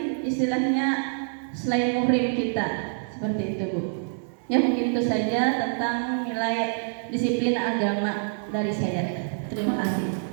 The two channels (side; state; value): left; silent; digital silence